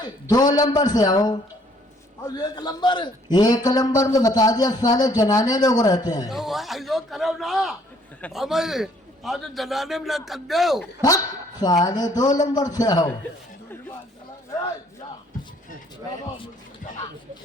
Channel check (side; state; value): both; normal; correlation 0.62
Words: 2 नंबर से आओ। और एक नंबर 1 नंबर में बता दिया, साले जनाने लोग रहते हैं। तो ऐसा करो ना हमें आज जनाने में न कर दो। भक्त साले, 2 नंबर से आओ।